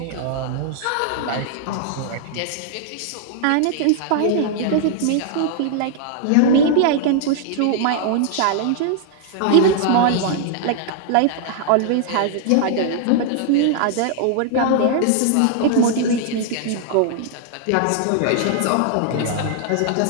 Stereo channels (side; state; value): both; different; correlation -0.01